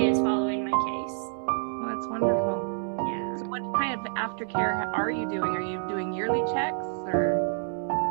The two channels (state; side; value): silent; left; digital silence